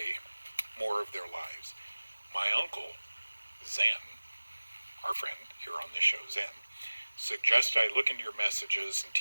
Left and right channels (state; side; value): inverted; both; correlation -1.00